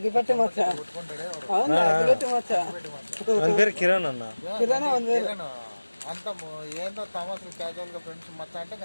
మచ్చ పేరు కిరణ్ అన్న. కిరణ్ అంత ఏందో తమాసు క్యాజువల్ గా ఫ్రెండ్స్ మచ్చ అంటే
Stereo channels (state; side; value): inverted; both; correlation -1.00